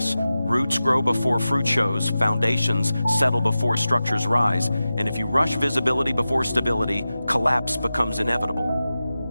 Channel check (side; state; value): both; inverted; correlation -0.94